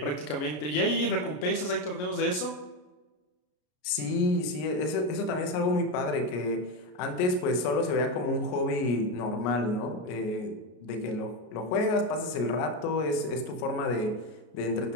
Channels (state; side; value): late; right; 33 ms